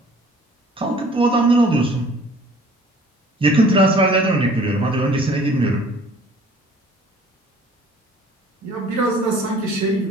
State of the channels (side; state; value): both; normal; correlation 0.52